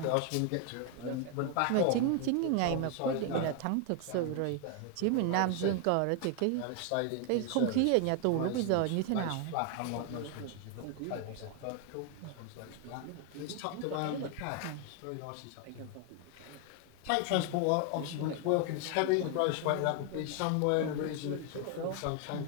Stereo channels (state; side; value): different; both; correlation 0.00